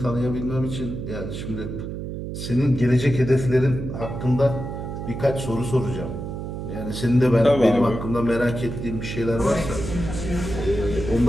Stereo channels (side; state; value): right; noise; hum, 6 dB below the sound